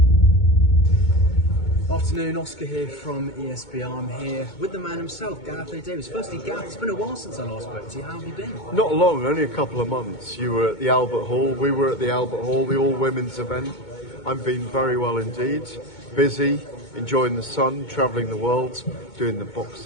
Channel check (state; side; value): late; right; 2.2 ms